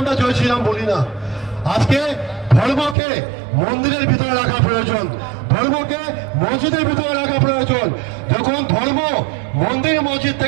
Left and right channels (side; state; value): left; drops out; at 3.0 s